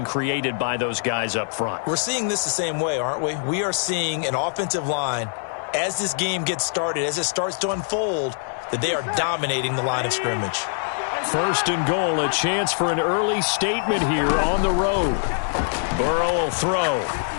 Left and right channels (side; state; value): right; silent; digital silence